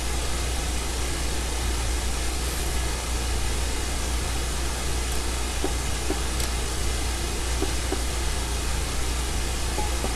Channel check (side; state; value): both; identical; correlation 1.00